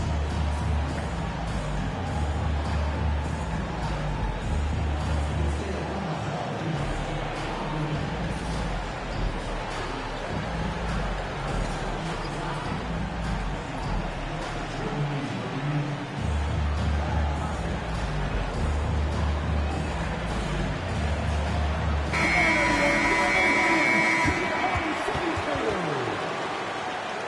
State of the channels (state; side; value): identical; both; correlation 1.00